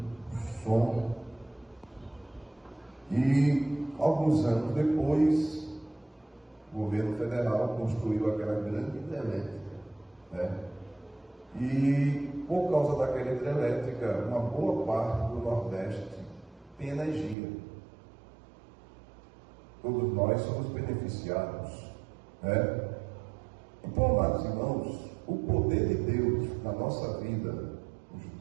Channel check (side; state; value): left; drops out; at 17.4 s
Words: som. E alguns anos depois, o governo federal construiu aquela grande hidrelétrica, né? E por causa daquela hidrelétrica, uma boa parte do Nordeste tem energia. Todos nós somos beneficiados, né? Então, amados irmãos, o poder de Deus na nossa vida, os